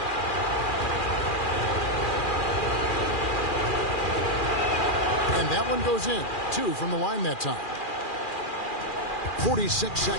And that one goes in. 2 from the line that time. 46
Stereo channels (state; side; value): late; right; 2.4 ms